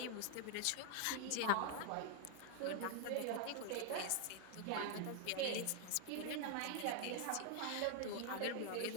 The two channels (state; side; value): different; both; correlation 0.00